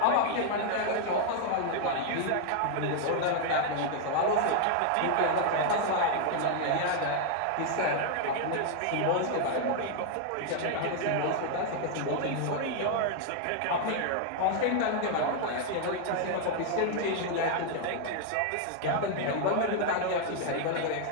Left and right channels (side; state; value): both; different; correlation 0.00